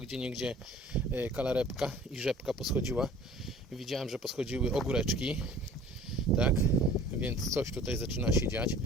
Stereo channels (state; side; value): normal; both; correlation 0.48